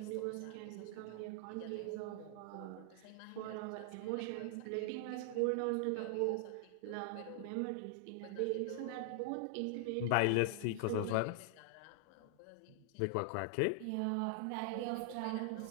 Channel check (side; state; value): both; different; correlation 0.00